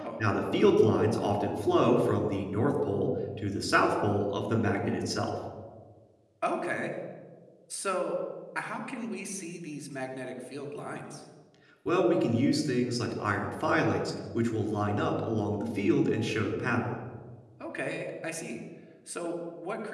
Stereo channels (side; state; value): both; identical; correlation 1.00